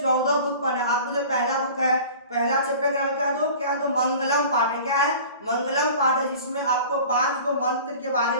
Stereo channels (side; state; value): both; inverted; correlation -0.41